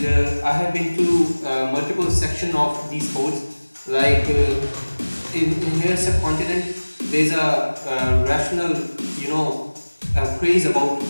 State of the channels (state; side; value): inverted; both; correlation -1.00